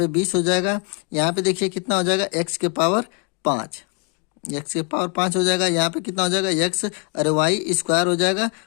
20 हो जाएगा। यहाँ पे देखिए कितना हो जाएगा, x के पावर 5, x के पावर 5 हो जाएगा। यहाँ पे कितना हो जाएगा, x अरे y² हो जाएगा,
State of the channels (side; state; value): right; quieter; 36.3 dB